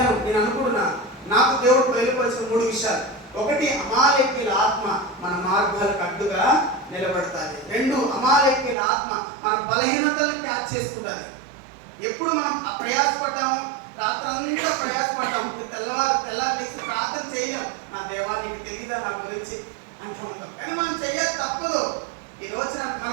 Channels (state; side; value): drops out; left; at 8.8 s